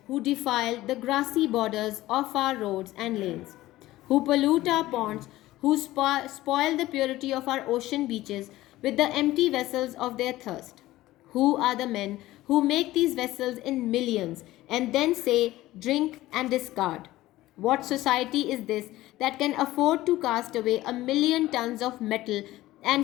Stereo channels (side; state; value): right; quieter; 16.6 dB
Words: who defile the grassy borders of our roads and lanes, who pollute our ponds, who spoil the purity of our ocean beaches with the empty vessels of their thirst? Who are the men who make these vessels in millions and then say, drink and discard? What society is this that can afford to cast away a million tons of metal